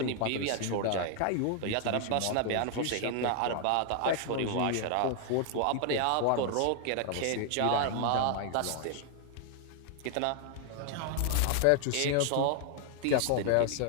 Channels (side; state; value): both; different; correlation 0.00